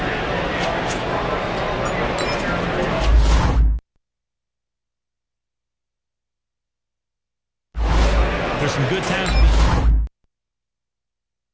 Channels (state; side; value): identical; both; correlation 1.00